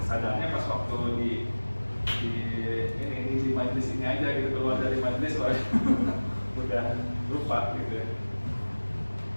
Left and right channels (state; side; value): inverted; both; correlation -1.00